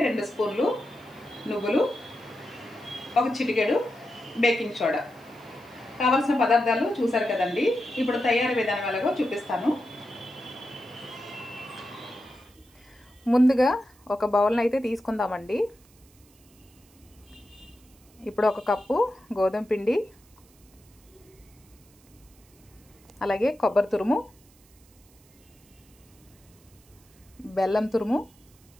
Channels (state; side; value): noise; right; hiss, 29 dB below the sound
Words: 2 స్పూన్లు నువ్వులు, ఒక చిటికెడు బేకింగ్ సోడా. కావాల్సిన పదార్థాలు చూసారు కదండి. ఇప్పుడు తయారీ విధానం ఎలాగో చూపిస్తాను. ముందుగా ఒక బౌల్ని అయితే తీసుకుందామండి. ఇప్పుడు ఒక కప్పు గోధుమ పిండి, అలాగే కొబ్బరి తురుము, బెల్లం తురుము,